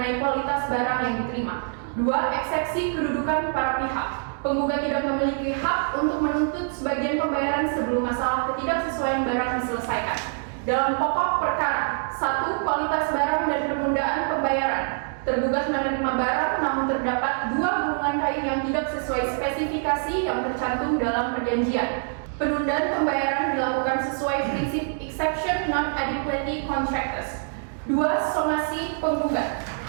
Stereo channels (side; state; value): left; silent; 62 dB below the other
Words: kualitas barang yang diterima. 2. Eksepsi kedudukan para pihak. Penggugat tidak memiliki hak untuk menuntut sebagian pembayaran sebelum masalah ketidaksesuaian barang diselesaikan. Dalam pokok perkara, 1. Kualitas barang dan penundaan pembayaran. Tergugat menerima barang namun terdapat 2 gulungan kain yang tidak sesuai spesifikasi yang tercantum dalam perjanjian. Penundaan pembayaran dilakukan sesuai prinsip exception non adequacy contractus. 2. Somasi penggugat.